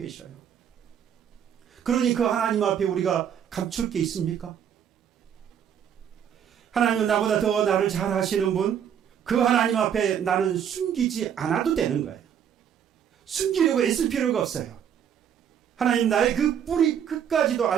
그러니 그 하나님 앞에 우리가 감출 게 있습니까? 하나님은 나보다 더 나를 잘 아시는 분, 그 하나님 앞에 나는 숨기지 않아도 되는 거예요. 숨기려고 애쓸 필요가 없어요. 하나님 나의 그 뿌리 끝까지도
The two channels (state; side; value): quieter; left; 8.8 dB